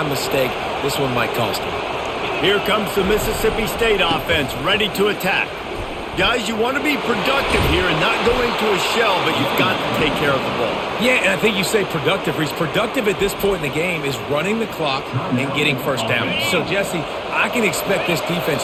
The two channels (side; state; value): both; identical; correlation 1.00